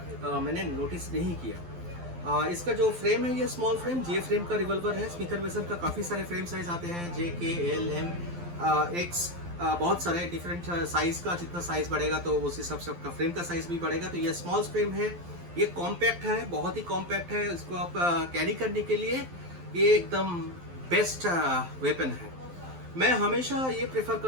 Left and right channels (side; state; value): left; late; 12 ms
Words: मैंने नोटिस नहीं किया। इसका जो फ्रेम है, ये स्मॉल फ्रेम जे फ्रेम का रिवॉल्वर है। स्मिथ एंड वेसन का काफ़ी सारे फ्रेम साइज आते हैं, JK, L, M, X, बहुत सारे डिफरेंट साइज का। जितना साइज बढ़ेगा तो उस हिसाब से आपका फ्रेम का साइज भी बढ़ेगा। तो ये स्मॉल फ्रेम है, ये कॉम्पैक्ट है, बहुत ही कॉम्पैक्ट है। इसको आप कैरी करने के लिए ये एकदम बेस्ट वेपन है। मैं हमेशा ये प्रेफर